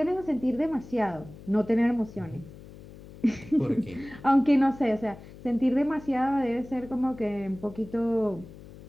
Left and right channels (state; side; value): noise; left; hum, 18 dB below the sound